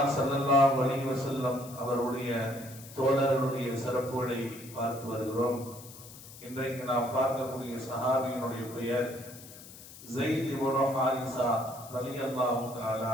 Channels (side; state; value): left; noise; hiss, 17 dB below the sound